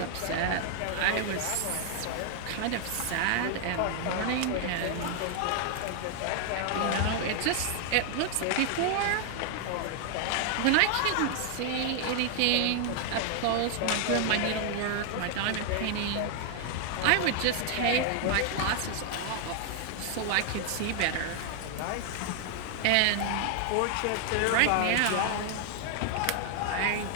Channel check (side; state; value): both; different; correlation 0.00